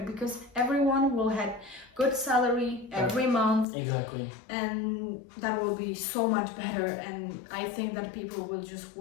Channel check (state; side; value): drops out; right; at 3.7 s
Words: because everyone will have good salary every month. Exactly. And that will be so much better, and I think that people will just